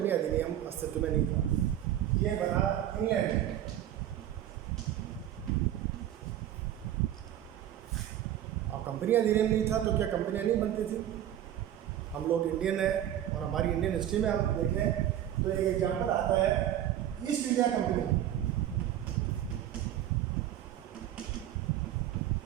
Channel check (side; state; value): left; quieter; 11.7 dB